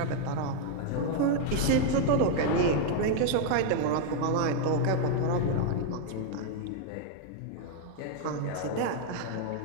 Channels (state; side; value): different; both; correlation 0.00